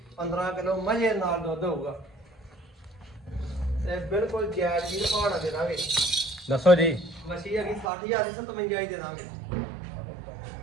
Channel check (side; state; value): left; drops out; at 7.9 s